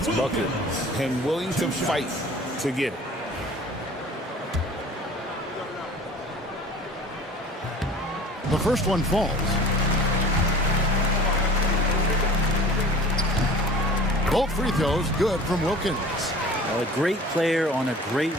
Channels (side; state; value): both; normal; correlation 0.44